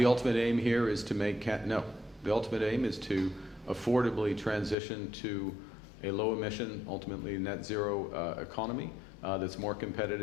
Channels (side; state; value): right; drops out; at 4.8 s